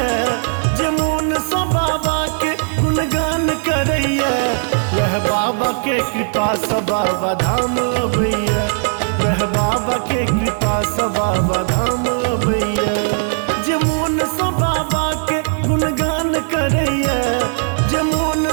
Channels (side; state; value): left; silent; digital silence